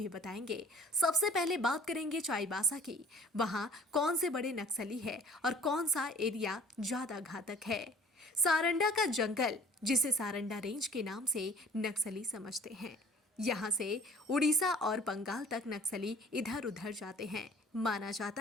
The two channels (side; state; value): both; normal; correlation 0.51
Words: बताएंगे। सबसे पहले बात करेंगे चाईबासा की। वहां कौन से बड़े नक्सली है और कौन सा एरिया ज्यादा घातक है। सारंडा का जंगल, जिसे सारंडा रेंज के नाम से नक्सली समझते हैं। यहाँ से उड़ीसा और बंगाल तक नक्सली इधर उधर जाते हैं। माना जाता